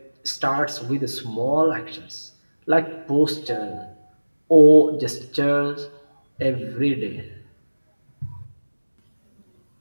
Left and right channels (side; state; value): both; inverted; correlation -1.00